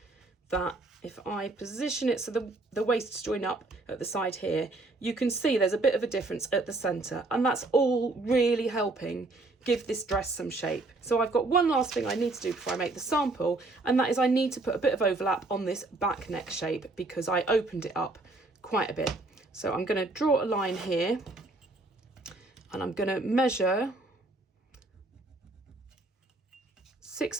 that if I position it so the waists join up at the side here, you can see there's a bit of a difference at the centre, and that's all really helping give this dress some shape. So I've got one last thing I need to do before I make the sample, and that is I need to put a bit of overlap on this back neck shape because I opened it up quite a bit. So I'm going to draw a line here, and I'm going to measure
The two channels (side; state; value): left; quieter; 3.1 dB